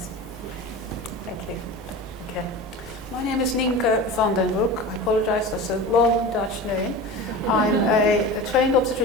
Thank you. Okay. My name is Nynke van den Broek. I apologize, that's a long Dutch name. I'm a trained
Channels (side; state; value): both; normal; correlation 0.32